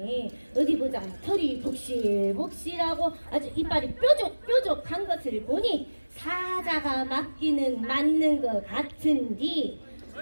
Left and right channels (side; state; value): both; inverted; correlation -1.00